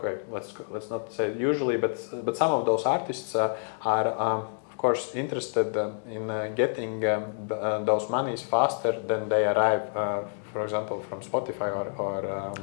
let's not say usually, but some of those artists are of course interested in getting those monies faster than they arrive, for example, from Spotify or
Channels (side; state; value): right; silent; digital silence